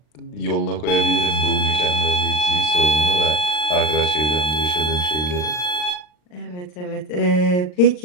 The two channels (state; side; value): late; right; 39 ms